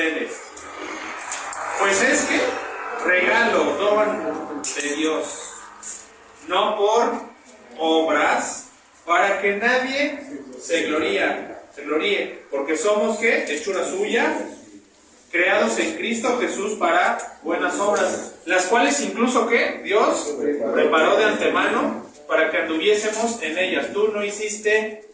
Pues es que regalo, don de Dios, no por obras, para que nadie se gloríe, porque somos ¿qué? Hechura suya, creados en Cristo Jesús para buenas obras, las cuales incluso ¿qué? Dios preparó de antemano para que anduviésemos en ellas. Tú no hiciste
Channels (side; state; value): both; identical; correlation 1.00